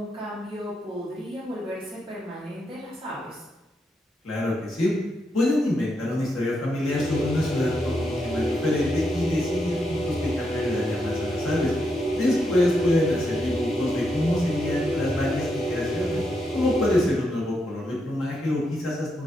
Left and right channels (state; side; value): normal; both; correlation 0.82